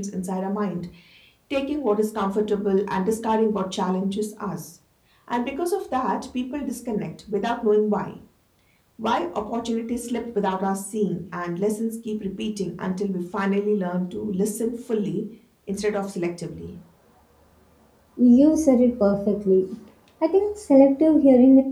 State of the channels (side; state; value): both; identical; correlation 1.00